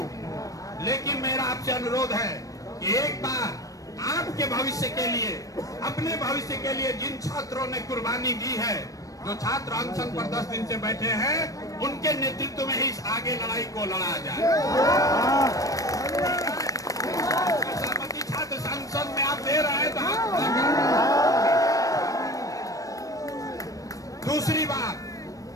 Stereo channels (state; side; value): late; right; 0.16 ms